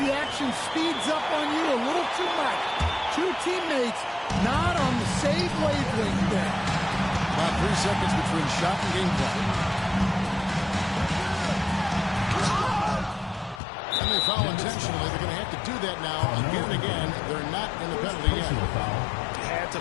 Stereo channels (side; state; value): right; drops out; at 13.6 s